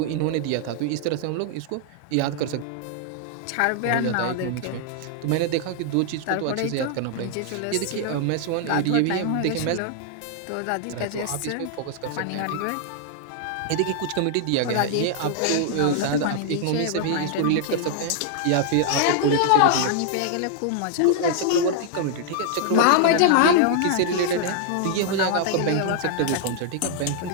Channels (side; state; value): both; different; correlation 0.00